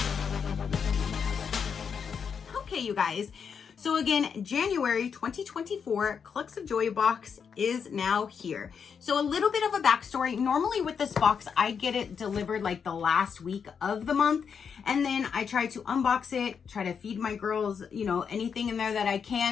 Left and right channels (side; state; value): right; quieter; 6.6 dB